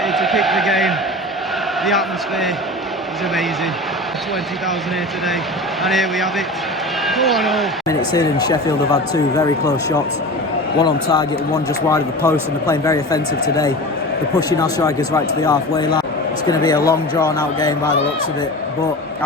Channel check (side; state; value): both; normal; correlation 0.32